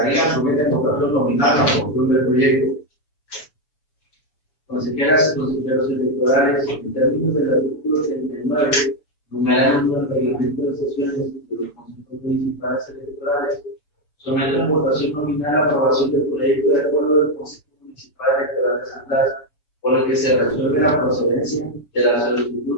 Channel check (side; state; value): right; late; 6.9 ms